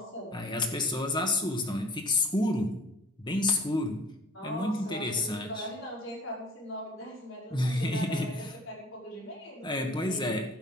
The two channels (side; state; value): both; normal; correlation 0.48